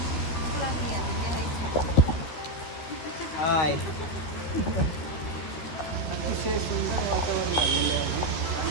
हाय. अतिशय सुंदर वातावरण झालेले आहे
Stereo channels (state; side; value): late; right; 13 ms